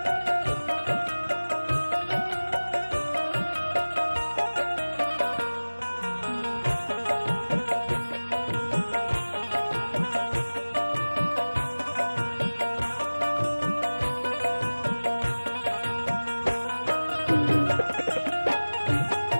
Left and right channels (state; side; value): inverted; both; correlation -1.00